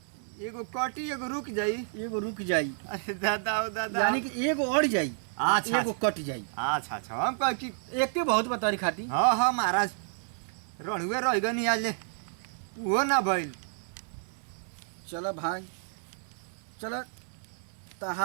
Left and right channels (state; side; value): silent; left; digital silence